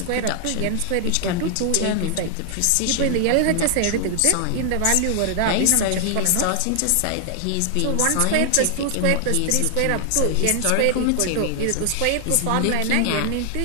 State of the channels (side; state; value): both; different; correlation 0.00